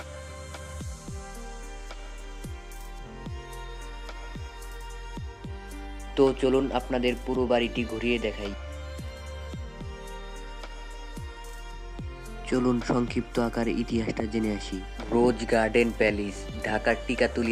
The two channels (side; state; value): both; identical; correlation 1.00